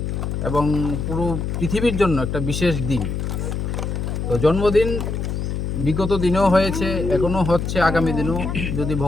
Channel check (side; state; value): left; noise; hum, 2 dB below the sound